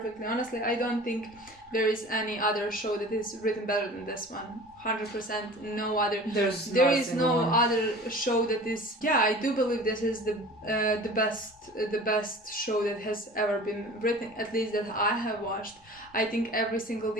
Honestly, I don't think there is any other show that is written better than this one. 100%, no other. There is no other show that is. Yeah, I do believe this is the best show that has ever been written. At least that I have watched. I think every single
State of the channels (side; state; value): both; normal; correlation 0.41